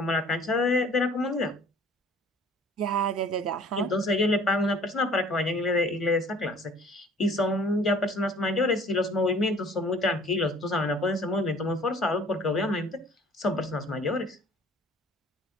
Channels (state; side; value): normal; both; correlation 0.52